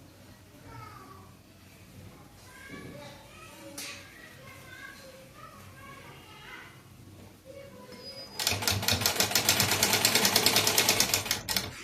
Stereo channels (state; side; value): identical; both; correlation 1.00